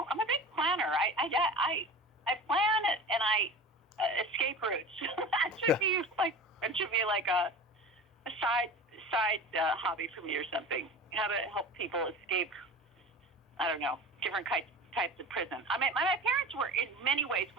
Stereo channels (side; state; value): both; normal; correlation 0.35